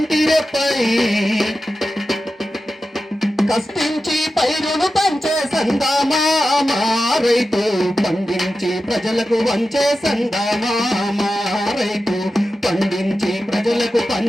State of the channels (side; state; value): both; normal; correlation 0.92